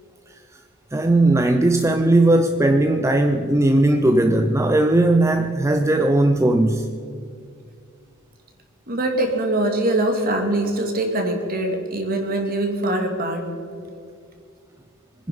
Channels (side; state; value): both; normal; correlation 0.72